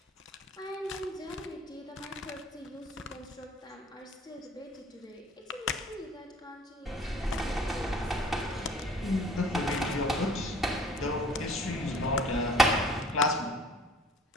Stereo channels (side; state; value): both; normal; correlation 0.51